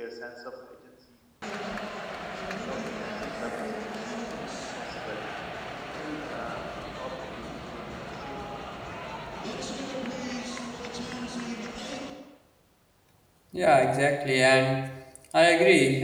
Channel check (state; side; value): identical; both; correlation 1.00